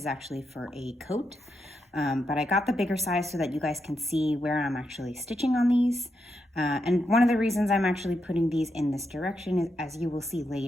actually for a coat, but I got the bigger size so that you guys can see where I'm actually stitching on these. And one of the reasons I'm actually putting these in this direction, is, as you will see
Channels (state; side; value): normal; both; correlation 0.84